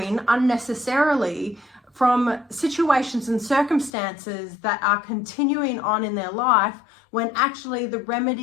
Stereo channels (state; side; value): drops out; right; at 3.9 s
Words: unnecessarily from situations and circumstances that are continuing on in their life, when actually the